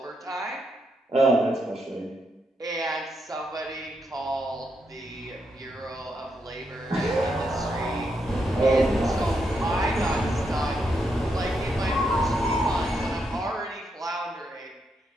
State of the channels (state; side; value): normal; both; correlation 0.80